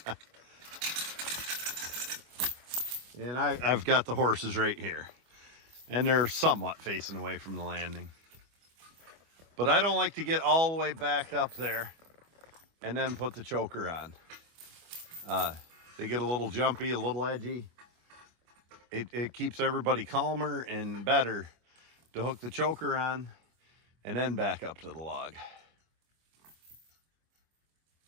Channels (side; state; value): left; late; 25 ms